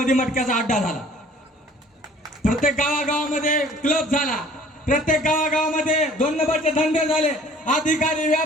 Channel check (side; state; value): both; normal; correlation 0.52